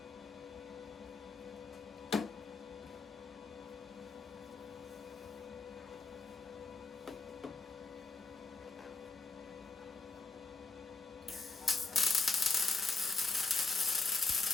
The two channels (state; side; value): quieter; right; 4.1 dB